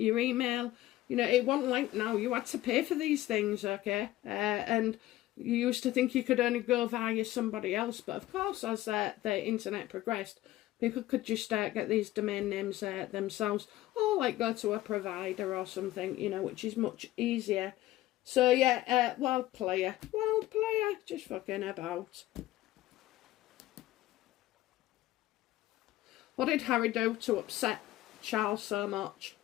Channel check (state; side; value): quieter; right; 15.7 dB